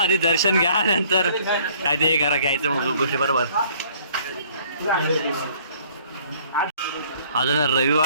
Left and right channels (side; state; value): both; inverted; correlation -0.58